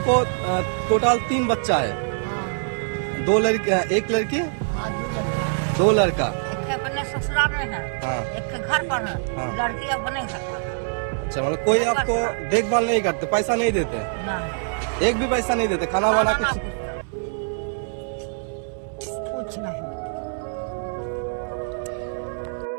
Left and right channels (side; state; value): left; silent; 62 dB below the other